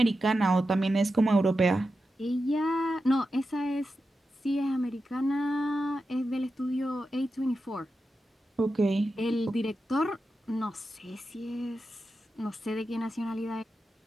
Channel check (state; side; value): normal; both; correlation 0.90